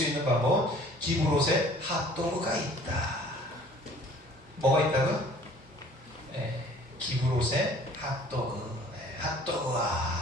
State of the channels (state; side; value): normal; both; correlation 0.52